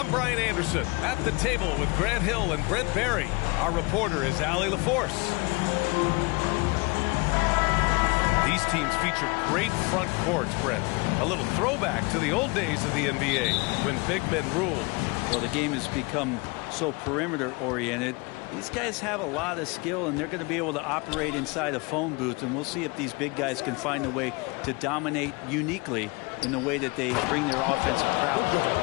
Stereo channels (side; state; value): right; quieter; 27.3 dB